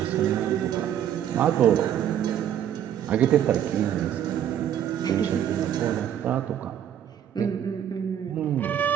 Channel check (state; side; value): quieter; left; 10.1 dB